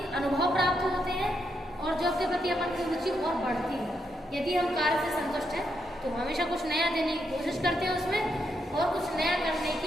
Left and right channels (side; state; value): both; normal; correlation 0.80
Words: अनुभव प्राप्त होते हैं, और जॉब के प्रति अपन की रुचि और बढ़ती है। यदि हम कार्य से संतुष्ट हैं तो हमेशा कुछ नया देने की कोशिश करते हैं उसमें, और कुछ नया करने